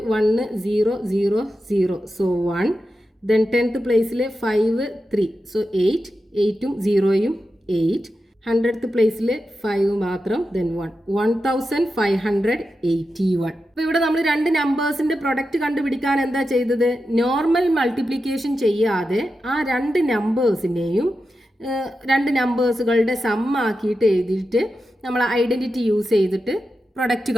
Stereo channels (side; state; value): both; normal; correlation 0.90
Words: 1 0 0 0, so 1. Then 10th പ്ലേസിൽ 5 3, so 8, 8ഉം 0യും 8. 100th പ്ലേസിൽ 5 മാത്രം, ദെൻ 1, 1581. അപ്പോൾ ഇവിടെ നമ്മൾ രണ്ട് നമ്പേഴ്സിന്റെ പ്രൊഡക്റ്റ് കണ്ടുപിടിക്കാൻ എന്താ ചെയ്തത്? നോർമൽ മൾട്ടിപ്ലിക്കേഷൻ ചെയ്യാതെ ആ രണ്ട് നമ്പേഴ്സിനെയും രണ്ട് നമ്പേഴ്സുകളുടെ സം ആക്കിയിട്ട് എഴുതിയിട്ട് നമ്മൾ ഐഡന്റിറ്റി യൂസ് ചെയ്തിട്ട് പ്രൊഡക്റ്റ്